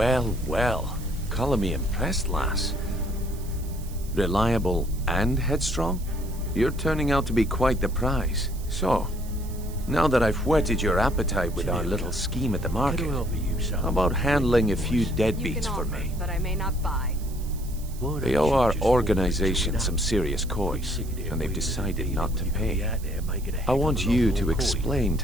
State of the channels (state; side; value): noise; right; hiss, 19 dB below the sound